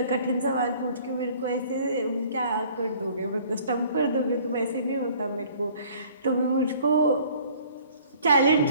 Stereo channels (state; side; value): inverted; both; correlation -0.54